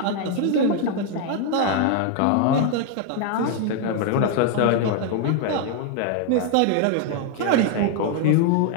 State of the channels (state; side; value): different; both; correlation 0.00